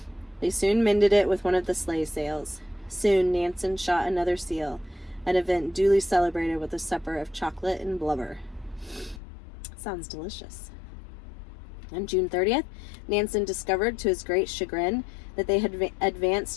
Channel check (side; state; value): right; drops out; at 9.2 s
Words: They soon mended it with one of the sleigh sails. Soon Nansen shot another seal, an event duly celebrated with a supper of chocolate and blubber. Sounds delicious. On June 30th, Nansen discovered to his great chagrin that they had